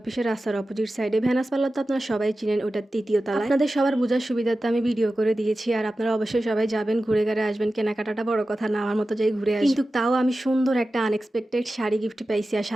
অফিসের রাস্তার অপোজিট সাইডে। ভেনাস পার্লার তো আপনারা সবাই চিনেন, ওটা তৃতীয় তলায়। আপনাদের সবার বোঝার সুবিধার্থে আমি ভিডিও করে দিয়েছি, আর আপনারা অবশ্যই সবাই যাবেন, ঘুরে ঘুরে আসবেন। কেনাকাটাটা বড় কথা না, আমার মতো যাই ঘুরে আসি। কিন্তু তাও আমি সুন্দর একটা আনএক্সপেক্টেড শাড়ি গিফট পাইছি, আর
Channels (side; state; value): both; normal; correlation 0.94